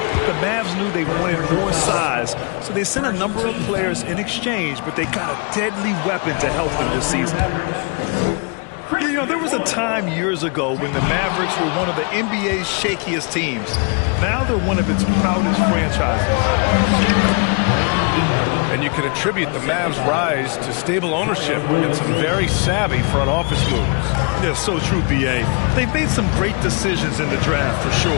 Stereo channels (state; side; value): quieter; right; 35.4 dB